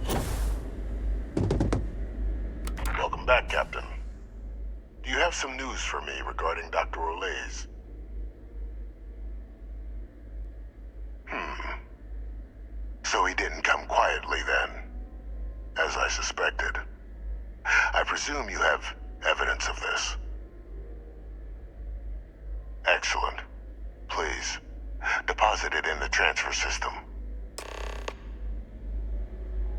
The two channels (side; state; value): both; identical; correlation 1.00